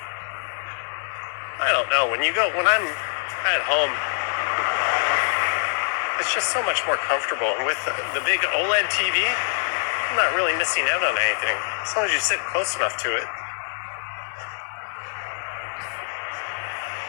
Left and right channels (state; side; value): silent; right; 62 dB below the other